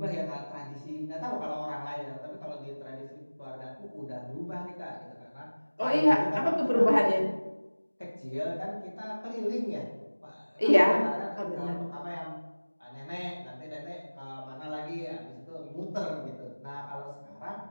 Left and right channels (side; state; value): both; inverted; correlation -1.00